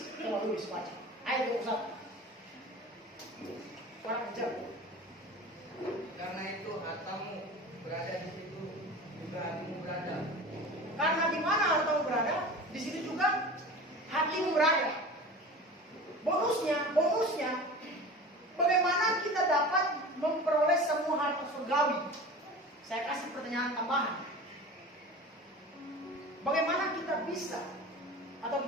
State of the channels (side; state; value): both; normal; correlation 0.35